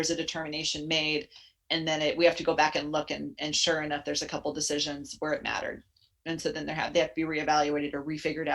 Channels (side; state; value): both; identical; correlation 1.00